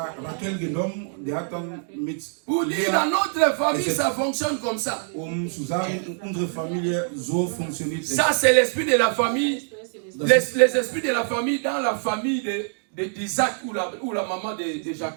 Rachel genommen, der hat dann mit Pour dire, dans notre famille, ça fonctionne comme ça. Zu sagen, unsere Familie so funktioniert. Ça, c'est l'esprit de la famille. Les esprits de la famille dans la famille d'Isaac ou la maman de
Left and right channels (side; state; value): left; silent; 61 dB below the other